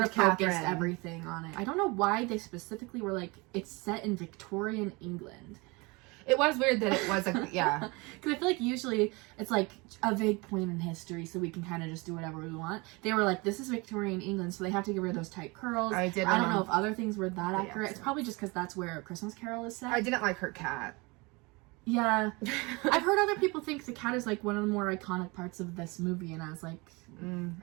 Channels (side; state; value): left; quieter; 26.2 dB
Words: of focused Catherine. everything on it. I don't know why they specifically were like, it's set in Victorian England. It was weird that it was, like, yeah. Because I feel like usually it's like a vague point in history, so we can kind of just do whatever we want. They were like, this is Victorian England, so they have to get rid of those tight curls. I don't know if other things were that accurate. It's probably just because that's where A Christmas Carol is set. I didn't like her cat. Yeah. I've heard other people think the cat is, like, one of the more iconic parts of this movie, and I was like, I